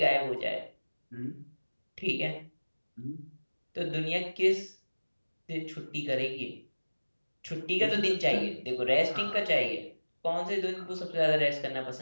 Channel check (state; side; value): inverted; both; correlation -1.00